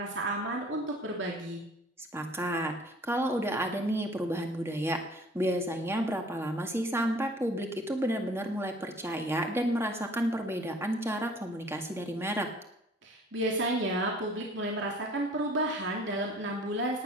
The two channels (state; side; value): normal; both; correlation 0.52